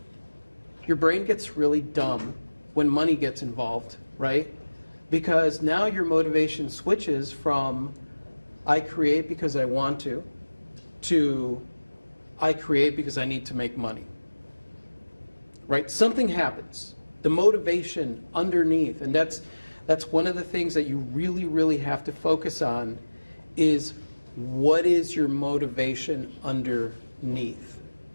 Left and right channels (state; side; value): inverted; both; correlation -1.00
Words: gets really dumb when money gets involved, right? Because now your motivation switches from I create because I want to I create because I need to make money. Right? Something happens. The motivation underneath, and that's one of the things that you really, really have to focus on is what is your motivation underneath?